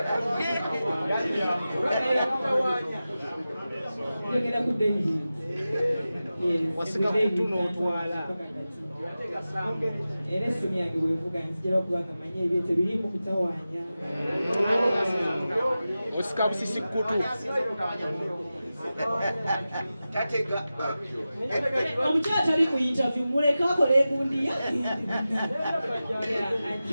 Yogera ku David. Wasika kutu n'otwala. Era essimu yange bwevuga nzijala okubanga manye ebyete biri mu kutawaanya. Osika busisi kutu. Omukyala tali ku interview muleka akola ebundiya.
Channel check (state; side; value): inverted; both; correlation -0.94